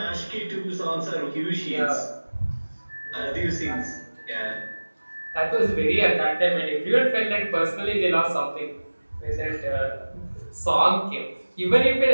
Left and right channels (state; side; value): inverted; both; correlation -1.00